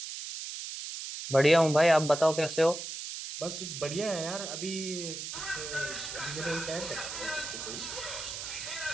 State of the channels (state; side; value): noise; right; hiss, 7 dB below the sound